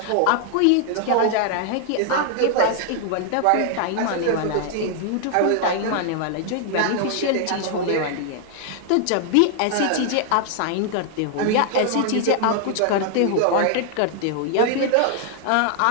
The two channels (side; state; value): both; different; correlation 0.00